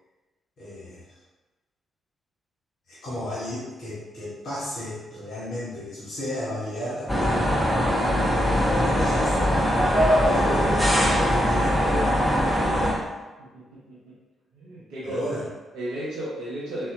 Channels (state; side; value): normal; both; correlation 0.83